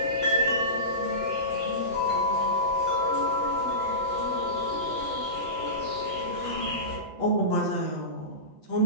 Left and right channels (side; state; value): left; late; 8.0 ms